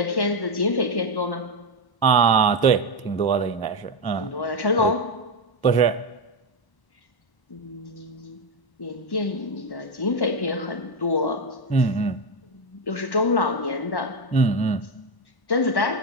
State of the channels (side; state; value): right; late; 1.0 ms